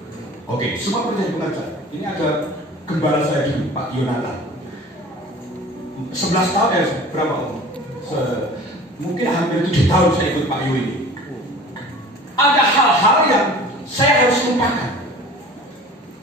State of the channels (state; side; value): normal; both; correlation 0.43